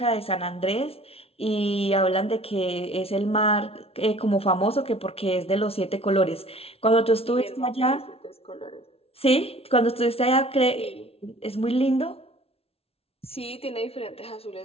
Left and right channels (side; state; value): right; late; 0.29 ms